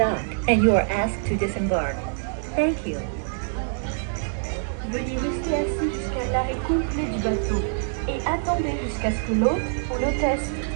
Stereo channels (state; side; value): silent; left; 62 dB below the other